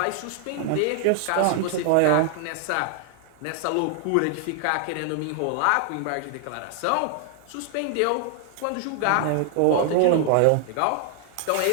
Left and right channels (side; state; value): both; different; correlation 0.00